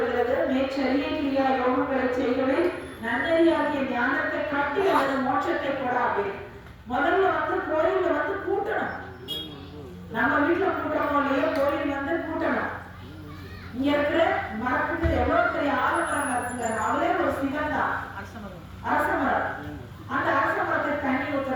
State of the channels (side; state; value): both; identical; correlation 1.00